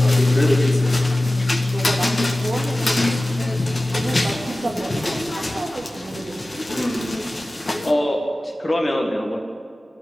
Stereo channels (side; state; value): both; normal; correlation 0.97